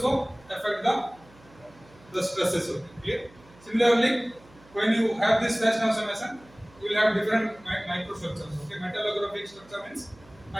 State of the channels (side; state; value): right; noise; hum, 25 dB below the sound